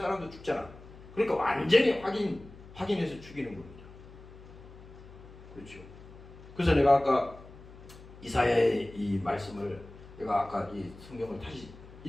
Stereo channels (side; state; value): left; noise; hum, 18 dB below the sound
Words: 사람도 죽잖아. 그러니까 완전히 확인해서 죽이는 겁니다. 그렇죠. 그래서 내가 아까 이사야의 이 말씀을 내가 아까 이 성경을 다시